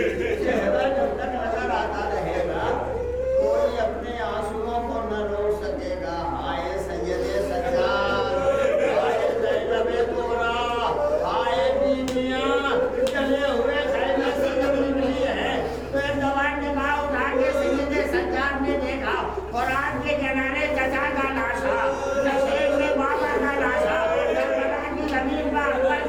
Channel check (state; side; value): identical; both; correlation 1.00